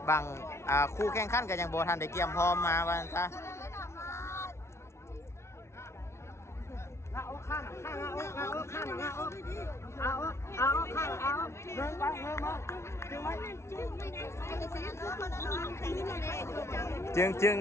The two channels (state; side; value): late; right; 0.13 ms